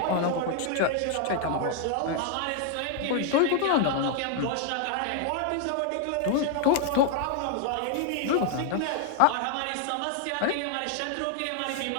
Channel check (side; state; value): both; different; correlation 0.00